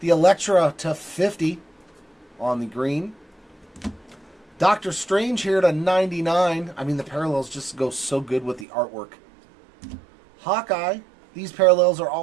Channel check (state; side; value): drops out; left; at 8.7 s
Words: The Elektra to 50 on the green. Doctor Strange here to 99. I mean, the parallels just go so good with the artwork. Hawkeye. These parallels are